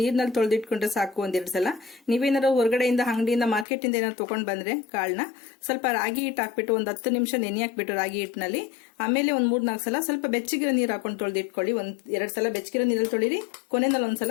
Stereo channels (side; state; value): right; drops out; at 3.7 s